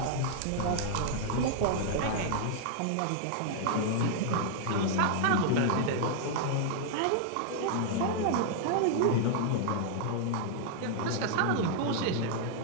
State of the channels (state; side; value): different; both; correlation -0.01